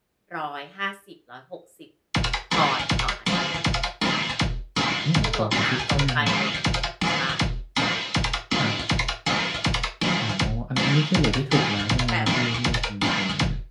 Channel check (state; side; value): identical; both; correlation 1.00